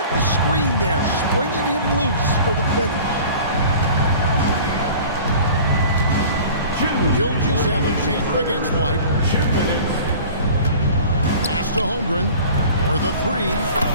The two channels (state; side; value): inverted; both; correlation -0.43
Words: the screen there, springing him loose for the finish. Gilgeous-Alexander against White. Pass to Holmgren for the 3.